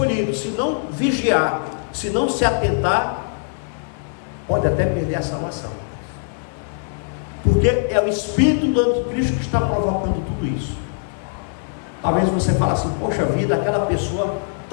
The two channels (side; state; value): right; silent; digital silence